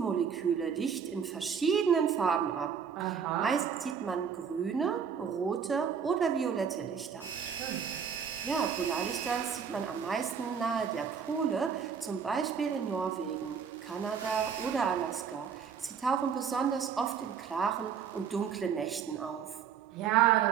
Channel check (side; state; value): left; quieter; 7.1 dB